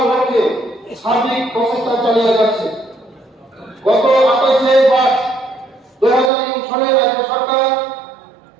লক্ষ্যে সার্বিক প্রচেষ্টা চালিয়ে যাচ্ছে। গত 28 মার্চ 2003 সালে রাজ্য সরকার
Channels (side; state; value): left; drops out; at 6.3 s